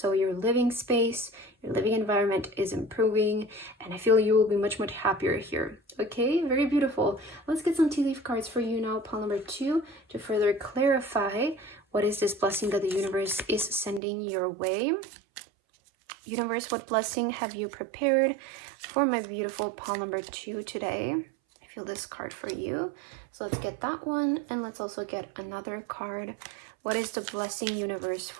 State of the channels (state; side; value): drops out; left; at 14.0 s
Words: your living space, your living environment is improving, and I feel you will be much, much happier here. Okay, very beautiful. Let's get some tea leaf cards for you now, pile number 2, to further clarify what is this blessing that the universe is sending your way. Universe, what blessing have you prepared for my beautiful pile number 2 today? I feel this card for you. So let's get that one, and let's also get another card. What is the blessing, universe,